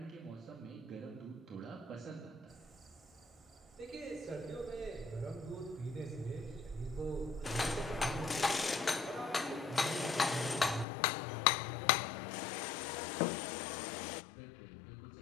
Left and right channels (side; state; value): right; drops out; at 10.9 s